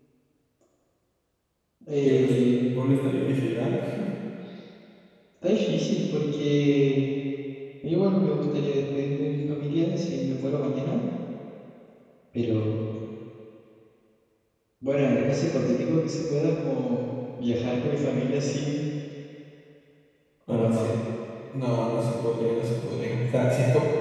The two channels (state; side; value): identical; both; correlation 1.00